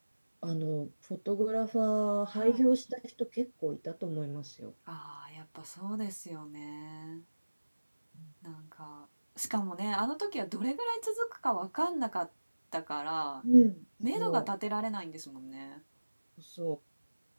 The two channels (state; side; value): inverted; both; correlation -1.00